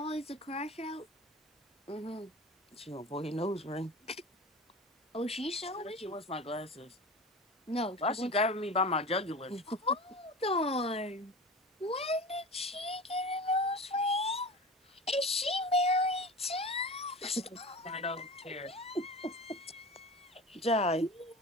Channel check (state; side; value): normal; both; correlation 0.33